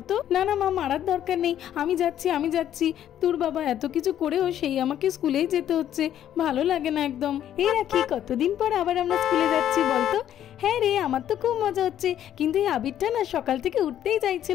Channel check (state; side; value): quieter; right; 10.9 dB